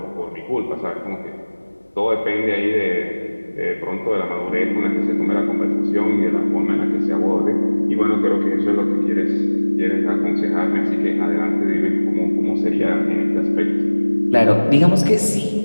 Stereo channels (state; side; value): inverted; both; correlation -1.00